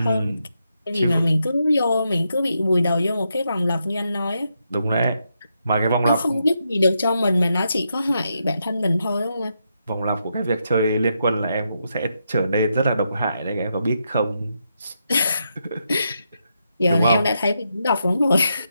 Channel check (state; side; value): inverted; both; correlation -0.82